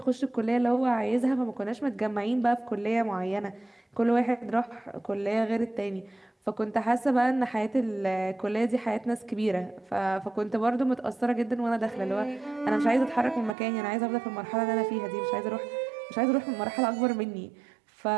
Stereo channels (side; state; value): left; drops out; at 13.6 s